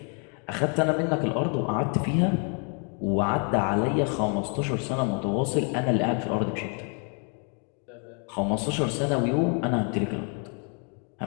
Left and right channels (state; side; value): quieter; right; 39.1 dB